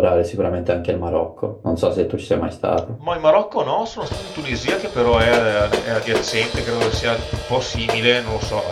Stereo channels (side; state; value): both; identical; correlation 1.00